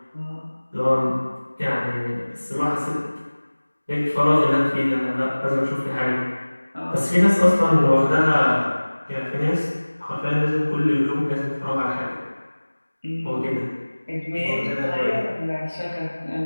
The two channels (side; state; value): both; inverted; correlation -1.00